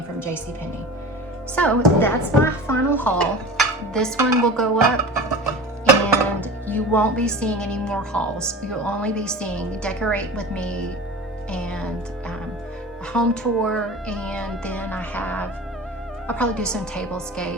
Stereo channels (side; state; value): both; normal; correlation 0.35